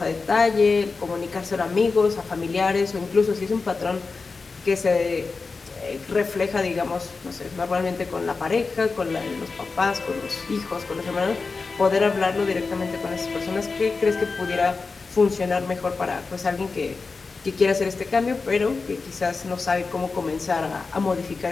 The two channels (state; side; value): quieter; right; 4.3 dB